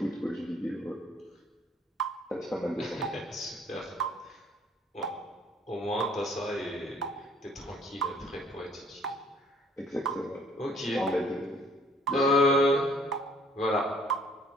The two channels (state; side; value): normal; both; correlation 0.59